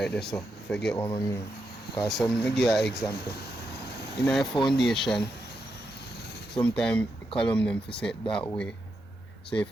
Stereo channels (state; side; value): normal; both; correlation 0.84